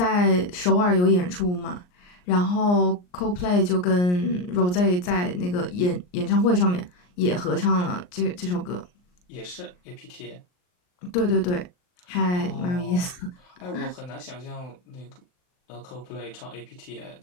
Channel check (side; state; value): right; late; 39 ms